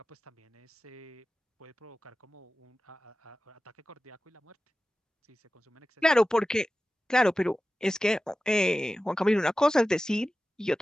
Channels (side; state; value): both; normal; correlation 0.96